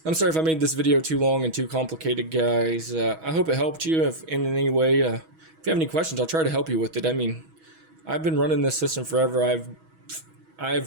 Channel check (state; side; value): late; left; 6.2 ms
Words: I'm sorry if I made this video too long and too complicated, guys. I hope it helped you in any way. If you have any questions, I'll try to help you with it. I mean, I've been running this system forever.